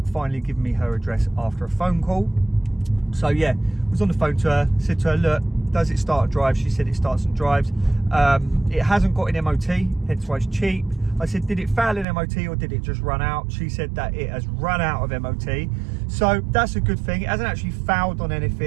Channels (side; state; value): left; drops out; at 12.1 s